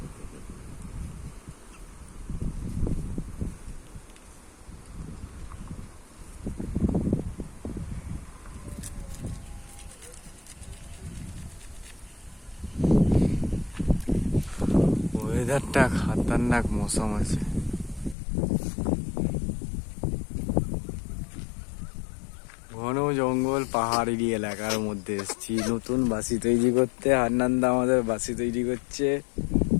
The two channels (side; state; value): right; drops out; at 18.2 s